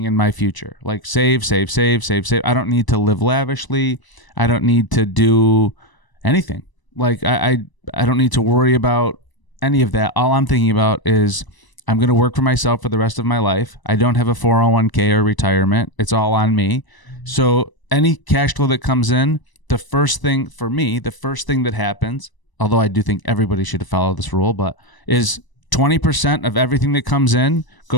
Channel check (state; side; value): late; right; 1.0 ms